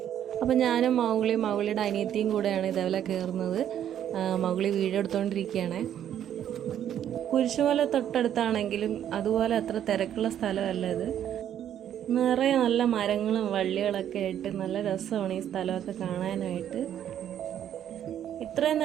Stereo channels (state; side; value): quieter; left; 10.3 dB